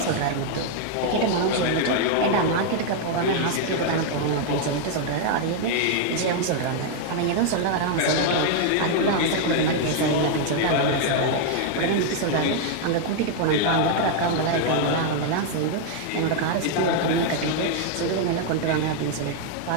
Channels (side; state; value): both; different; correlation 0.00